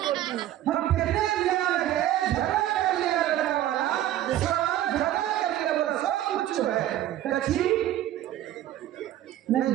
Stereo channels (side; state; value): left; quieter; 13.0 dB